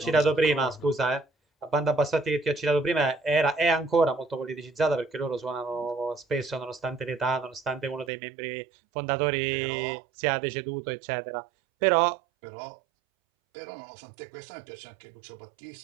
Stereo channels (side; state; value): left; drops out; at 8.1 s